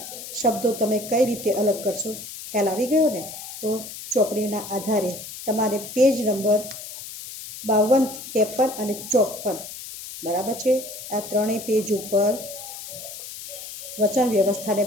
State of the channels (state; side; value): noise; left; hiss, 11 dB below the sound